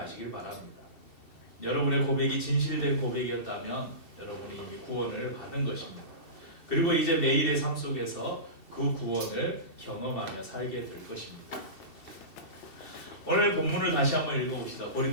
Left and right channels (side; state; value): right; late; 2.7 ms